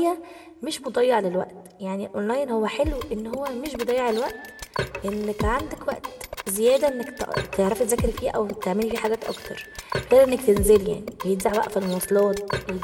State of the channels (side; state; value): both; identical; correlation 1.00